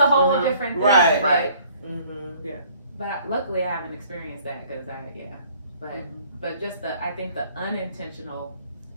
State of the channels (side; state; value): both; inverted; correlation -0.57